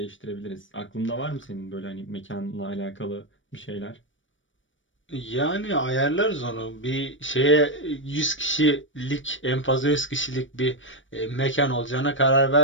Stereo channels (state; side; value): late; right; 0.56 ms